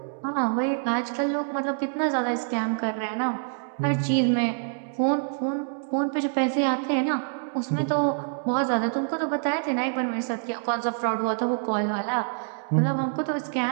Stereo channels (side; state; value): left; silent; digital silence